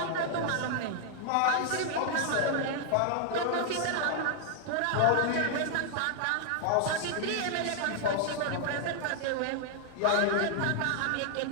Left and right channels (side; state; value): both; different; correlation -0.01